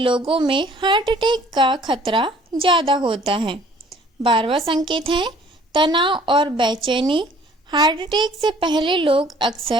में हार्ट अटैक का खतरा ज़्यादा होता है। 12वां संकेत है तनाव और बेचैनी। हार्ट अटैक से पहले लोग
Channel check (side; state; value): both; normal; correlation 0.56